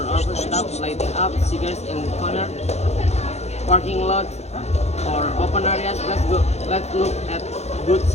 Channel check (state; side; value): late; right; 0.31 ms